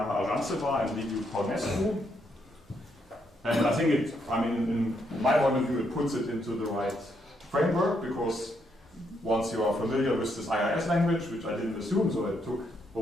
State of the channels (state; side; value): normal; both; correlation 0.76